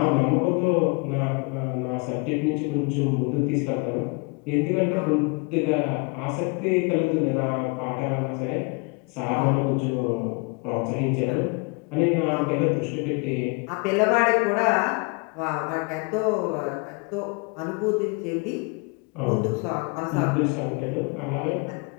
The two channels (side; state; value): right; quieter; 31.2 dB